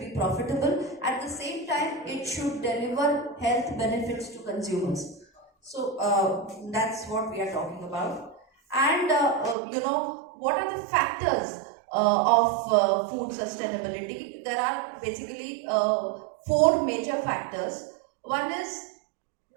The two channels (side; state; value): left; drops out; at 9.6 s